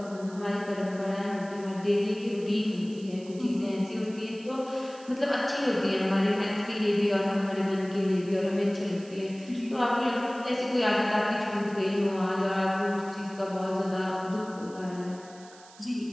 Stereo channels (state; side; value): noise; right; hiss, 22 dB below the sound